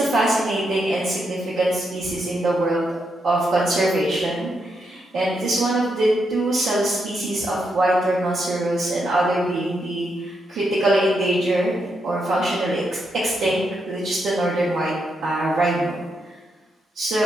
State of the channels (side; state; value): both; normal; correlation 0.81